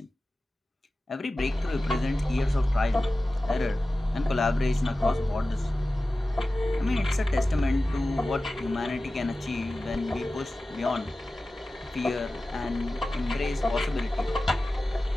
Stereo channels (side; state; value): both; normal; correlation 0.95